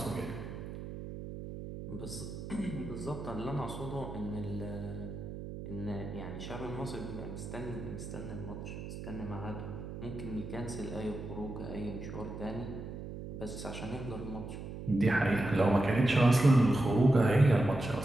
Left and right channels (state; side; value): noise; right; hum, 9 dB below the sound